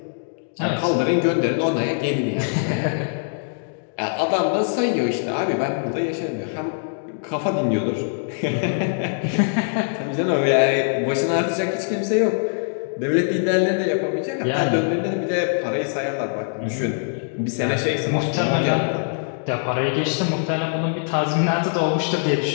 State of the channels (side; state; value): right; silent; digital silence